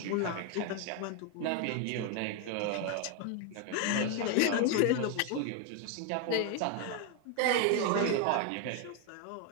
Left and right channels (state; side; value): different; both; correlation 0.01